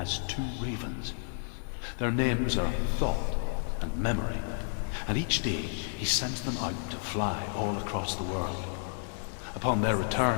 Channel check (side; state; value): right; silent; 57 dB below the other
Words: two ravens. Their names are Thought and Memory, and each day he sends them out to fly all across the world. Upon their